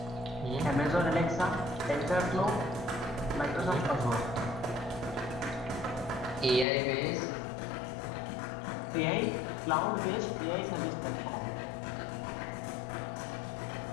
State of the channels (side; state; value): right; drops out; at 6.7 s